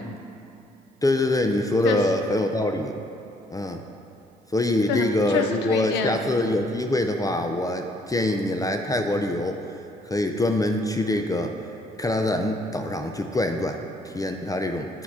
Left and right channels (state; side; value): normal; both; correlation 0.66